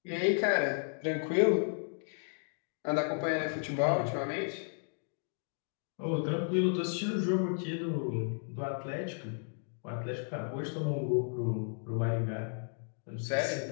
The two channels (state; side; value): silent; right; 55 dB below the other